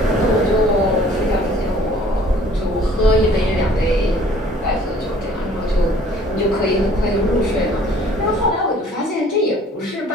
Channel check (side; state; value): both; normal; correlation 0.54